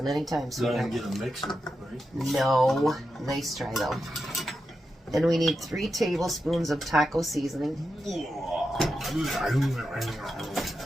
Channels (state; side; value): normal; both; correlation 0.88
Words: anytime. So I can get a mixer, right? No. Nice try, though. And we need 3 tablespoons of taco seasoning.